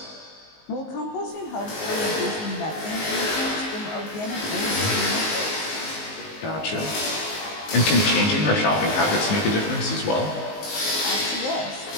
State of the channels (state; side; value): late; right; 19 ms